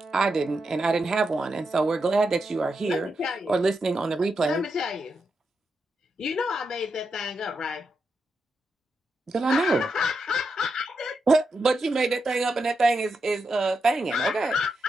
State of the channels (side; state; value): both; normal; correlation 0.85